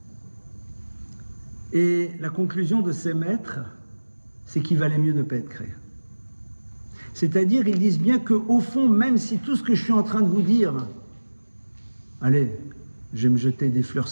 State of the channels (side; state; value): both; inverted; correlation -1.00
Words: Et la conclusion de ces maîtres, c'est qu'il valait mieux ne pas être créé. C'est-à-dire, ils disent bien qu'au fond, même si tout ce que je suis en train de vous dire, allez, je vais me jeter des fleurs,